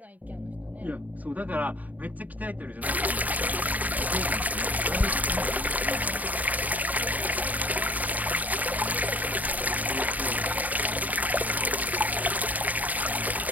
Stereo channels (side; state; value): left; late; 0.076 ms